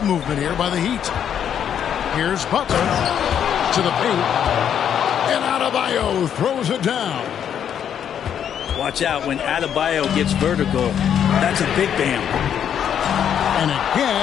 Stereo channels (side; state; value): right; quieter; 8.9 dB